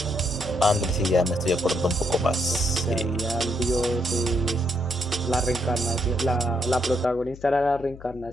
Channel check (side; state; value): left; noise; hum, 17 dB below the sound